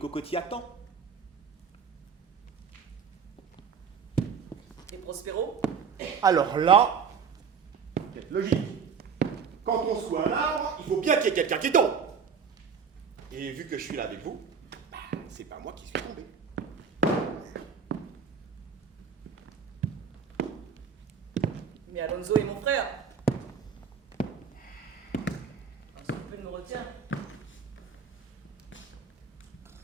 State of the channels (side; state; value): left; quieter; 6.3 dB